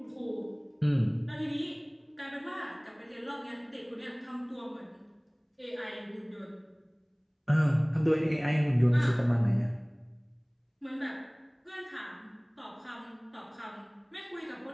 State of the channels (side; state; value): both; identical; correlation 1.00